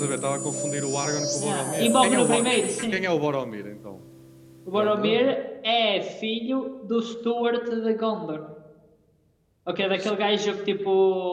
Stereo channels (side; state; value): both; identical; correlation 1.00